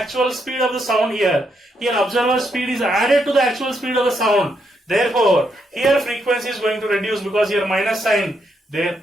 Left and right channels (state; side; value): normal; both; correlation 0.78